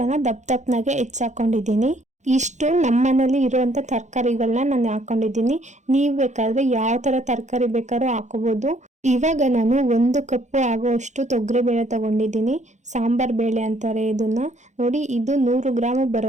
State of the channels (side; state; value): left; late; 0.34 ms